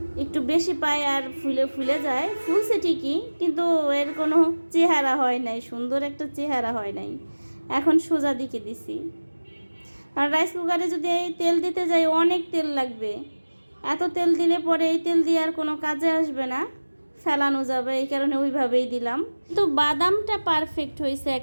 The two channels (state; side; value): inverted; both; correlation -1.00